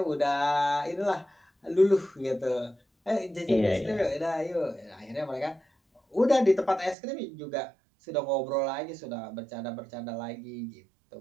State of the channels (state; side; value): drops out; left; at 7.0 s